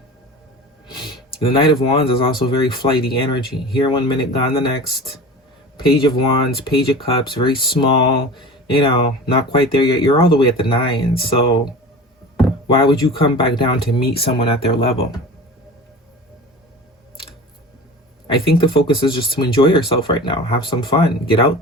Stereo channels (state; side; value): normal; both; correlation 0.35